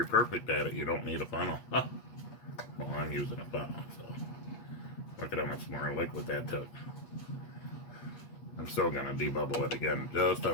perfect at it, you don't need a funnel. Well, I'm using a funnel, so look at how much more liquid that took. I'm still going to debubble it again, just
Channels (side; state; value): right; late; 8.3 ms